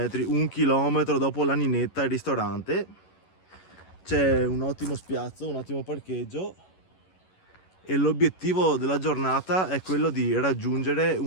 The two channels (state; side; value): late; right; 11 ms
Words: 1 chilometro dopo l'Aninetta, il ristorante. C'è un ottimo spiazzo, un ottimo parcheggio e l'obiettivo della giornata è quello di raggiungere